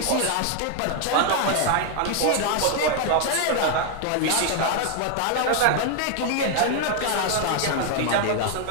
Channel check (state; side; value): different; both; correlation 0.00